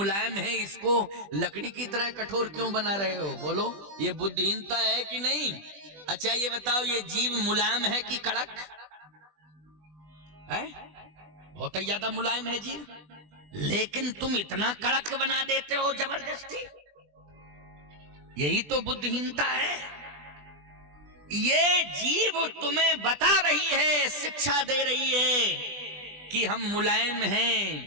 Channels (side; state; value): left; late; 20 ms